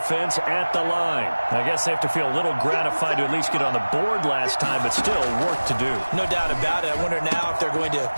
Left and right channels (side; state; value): both; inverted; correlation -1.00